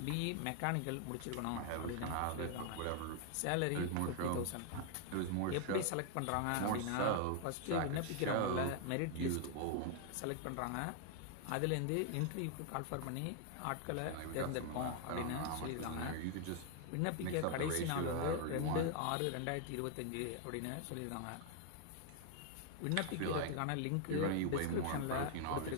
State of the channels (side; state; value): both; different; correlation 0.00